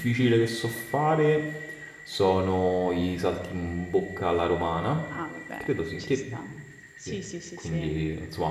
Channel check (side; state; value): both; identical; correlation 1.00